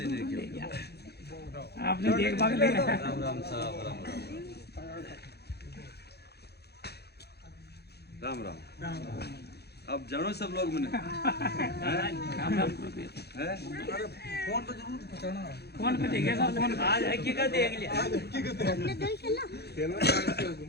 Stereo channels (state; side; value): late; right; 0.47 ms